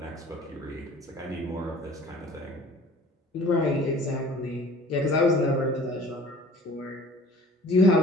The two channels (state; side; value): normal; both; correlation 0.48